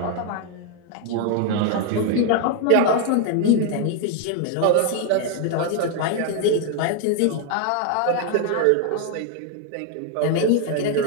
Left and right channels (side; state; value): both; different; correlation 0.00